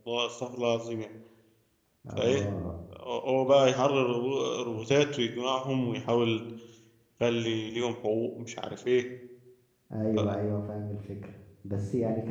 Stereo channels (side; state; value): both; identical; correlation 1.00